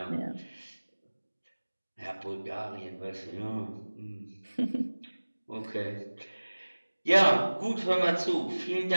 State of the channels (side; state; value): both; inverted; correlation -1.00